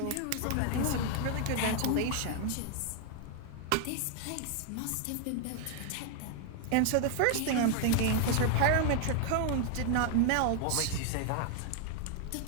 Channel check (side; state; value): both; different; correlation 0.00